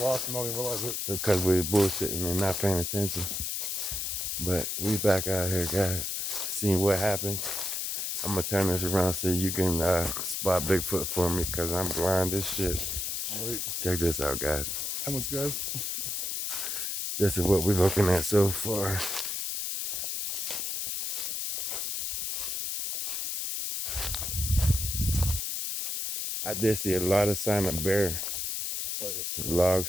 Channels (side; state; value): left; noise; hiss, 2 dB below the sound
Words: and don't even realize it. Because we're bullshitting and not paying attention. But we back out here, guys. Seeing what happens. I'm going to turn this around so you can spot Bigfoot for me because I'm blind as shit. Wait. Check this out, guys. How much, guys? This is what we're looking at so far. I did see a lot of sign of bear.